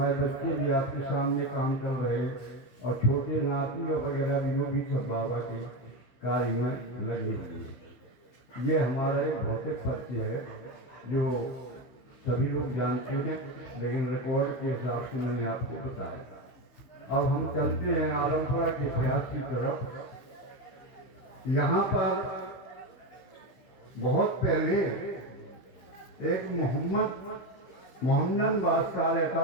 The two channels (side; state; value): right; late; 15 ms